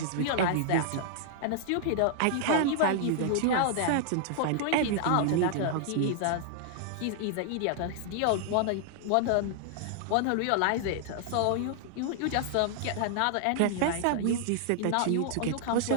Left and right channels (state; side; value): different; both; correlation -0.01